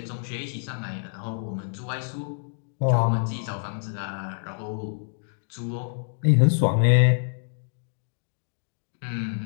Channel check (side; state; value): right; silent; digital silence